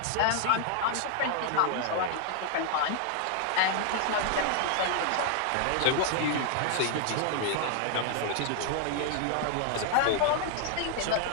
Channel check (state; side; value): different; both; correlation 0.00